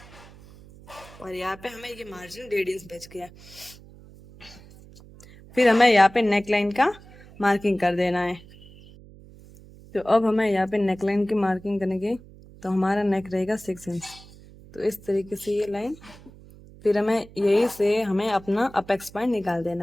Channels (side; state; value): right; noise; hum, 21 dB below the sound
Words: और यहाँ पे हमें ये मार्जिन 1.5 इंच बच गया। फिर हमें यहाँ पे नेक लाइन का मार्किंग कर देना है। तो अब हमें यहाँ पे नेक लाइन की मार्किंग करेंगे। तो हमारा नेक रहेगा 6 इंच। तो इस तरीके से ये लाइन। फिर हमें यही से हमें अपना अपेक्स पॉइंट निकाल